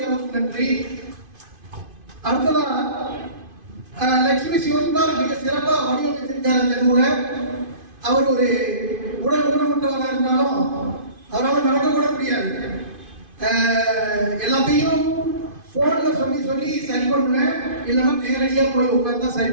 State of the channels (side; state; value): left; late; 2.5 ms